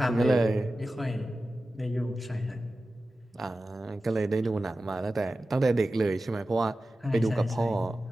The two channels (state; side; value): normal; both; correlation 0.94